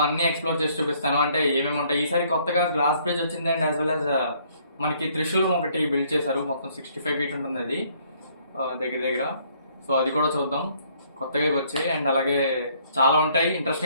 అన్ని ఎక్స్ప్లోర్ చేసి చూపిస్తాను. అంటే ఏమేమి ఉంటాయి. ఈసారి కొత్తగా గ్లాస్ బ్రిడ్జ్ వచ్చింది అండ్ యాజ్ వెల్ యాజ్ మనకి త్రిశూలం ఒకటి బిల్డ్ చేశారు. మొత్తం 65 feet ఉంటుంది అది దగ్గర. సో అది కూడా చూద్దాం. కొత్తగా వచ్చాయి అండ్ అలాగే చాలా ఉంటాయి.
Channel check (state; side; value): inverted; both; correlation -0.64